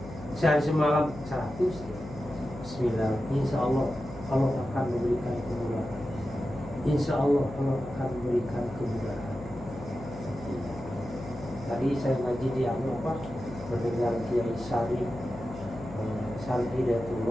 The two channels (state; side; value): noise; left; hum, 14 dB below the sound